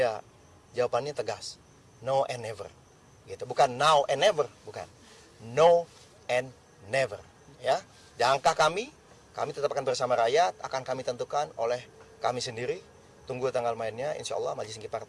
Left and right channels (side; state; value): both; identical; correlation 1.00